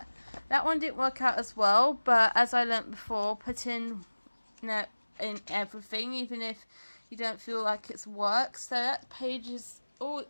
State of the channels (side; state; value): both; inverted; correlation -1.00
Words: That one didn't work out as well, but as I learnt before, put in everything, even if you don't feel like it's work. So that page is all